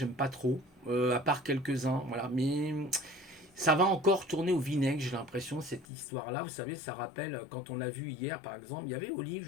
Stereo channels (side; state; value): right; drops out; at 5.9 s